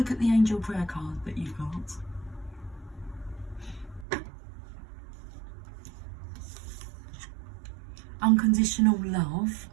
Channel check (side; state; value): left; drops out; at 4.0 s